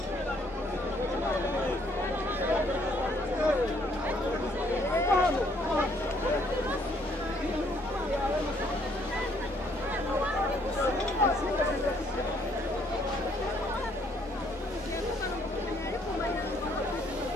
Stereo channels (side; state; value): both; normal; correlation 0.66